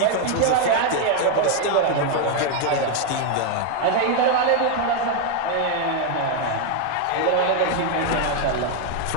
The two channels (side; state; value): both; different; correlation 0.01